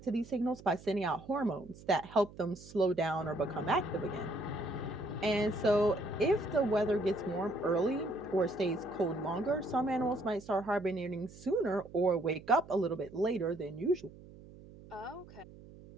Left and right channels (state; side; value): noise; right; hum, 19 dB below the sound